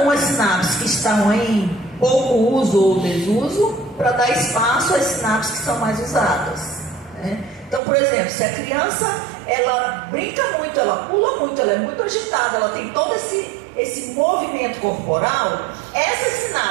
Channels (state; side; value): drops out; left; at 7.8 s